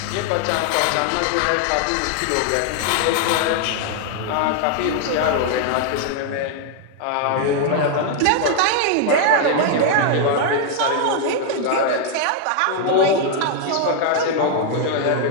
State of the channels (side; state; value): both; different; correlation 0.00